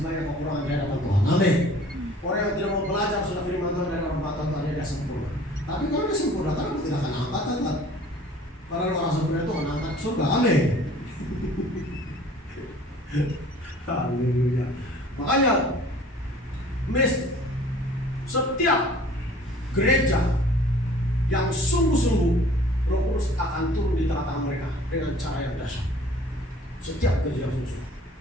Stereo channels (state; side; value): normal; both; correlation 0.50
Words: banyak kekurangan di hadapan Tuhan. Amin. Orang yang tidak mau belajar sudah firman Tuhan dari orang Tuhan dia sempurna. Tapi kalau dia sempurna, kan tidak akan angkat kan? Karena orang sempurna itu akan angkat surga. Amin. Haleluya. Makanya setiap gereja yang sungguh-sungguh, Roh Kudus akan turun di tengah-tengah mereka dengan cara yang dahsyat. Setiap gereja yang sungguh-sungguh.